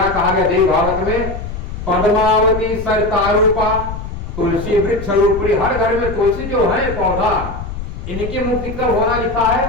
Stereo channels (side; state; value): left; noise; rumble, 8 dB below the sound